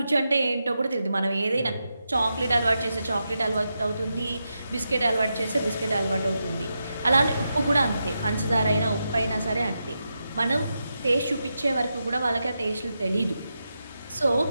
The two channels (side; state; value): both; inverted; correlation -0.87